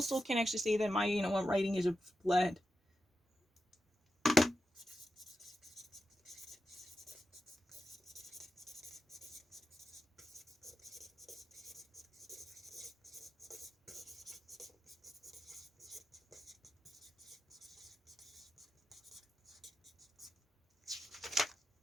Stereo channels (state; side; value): normal; both; correlation 0.89